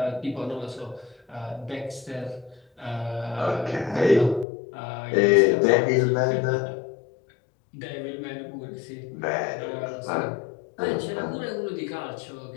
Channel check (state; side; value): drops out; right; at 4.5 s